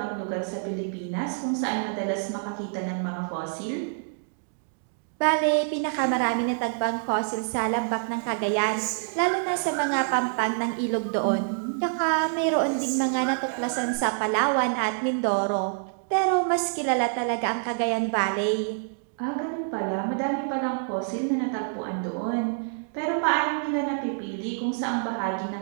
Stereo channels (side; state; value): left; silent; digital silence